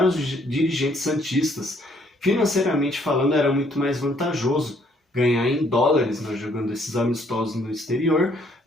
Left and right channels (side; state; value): both; normal; correlation 0.66